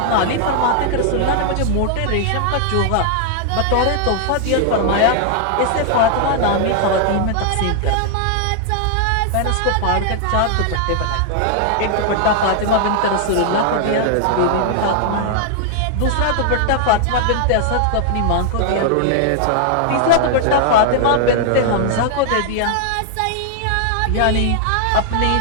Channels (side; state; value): both; different; correlation 0.00